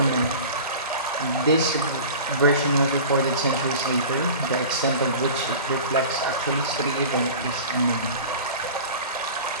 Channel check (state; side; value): inverted; both; correlation -0.37